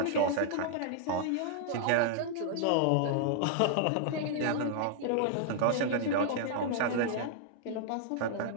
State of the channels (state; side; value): different; both; correlation -0.01